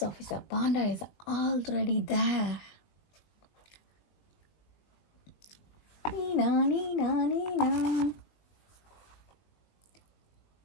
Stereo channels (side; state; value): right; late; 20 ms